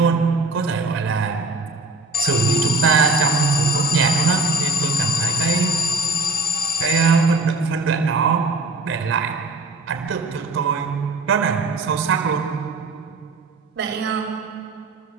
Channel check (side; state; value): left; quieter; 3.2 dB